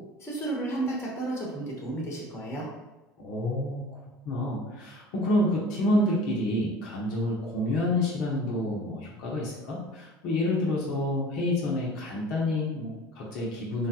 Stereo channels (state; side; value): normal; both; correlation 0.43